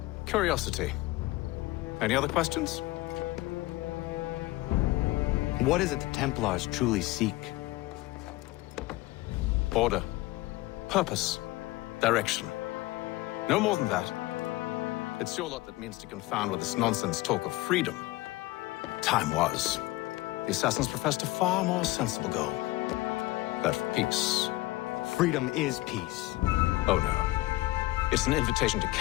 Curiosity. Any other questions? What is it the Templars truly seek? Order. Purpose. Direction. No more than that. It's your lot that means to confound with this nonsense talk of freedom. Time was. The assassins professed a far more sensible goal. That of peace. Freedom is peace. Oh no. It's an invitation to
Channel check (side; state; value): right; quieter; 18.9 dB